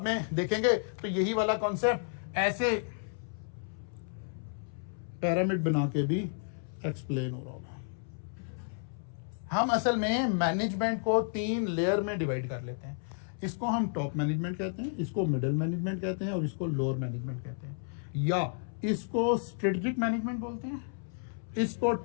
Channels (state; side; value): silent; right; 56 dB below the other